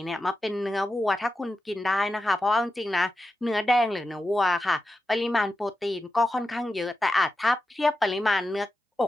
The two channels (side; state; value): both; normal; correlation 0.90